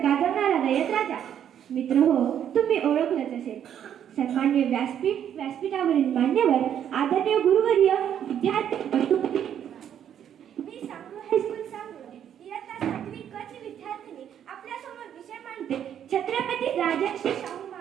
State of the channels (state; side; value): quieter; left; 9.6 dB